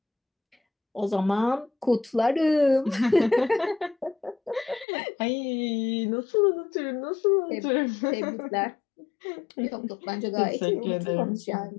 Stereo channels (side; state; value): right; drops out; at 4.9 s